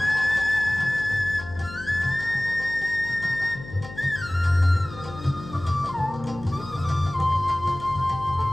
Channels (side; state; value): left; noise; hum, 15 dB below the sound